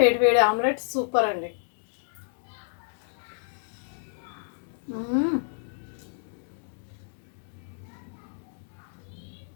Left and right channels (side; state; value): right; silent; digital silence